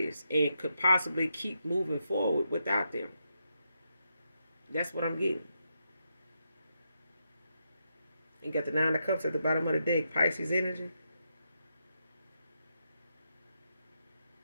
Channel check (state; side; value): inverted; both; correlation -0.83